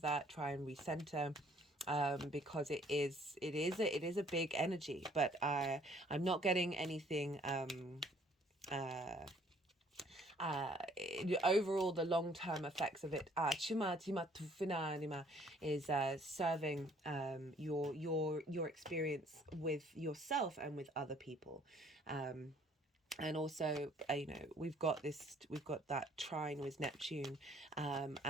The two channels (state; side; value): normal; both; correlation 0.60